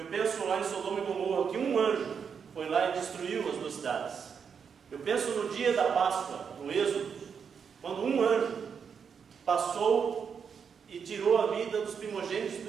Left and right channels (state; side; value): quieter; left; 6.7 dB